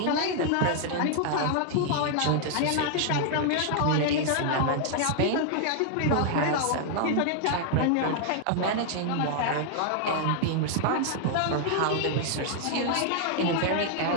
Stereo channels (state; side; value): different; both; correlation 0.00